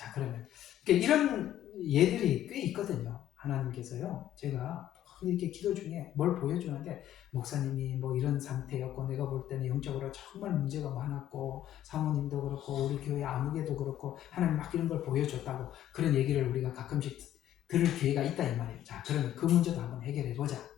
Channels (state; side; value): quieter; right; 12.0 dB